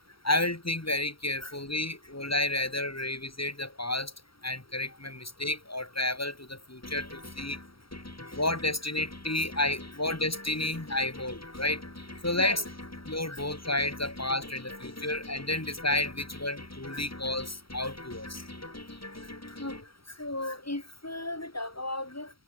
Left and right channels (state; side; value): late; right; 0.75 ms